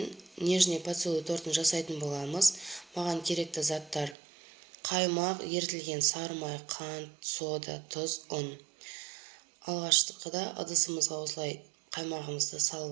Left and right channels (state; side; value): drops out; left; at 4.2 s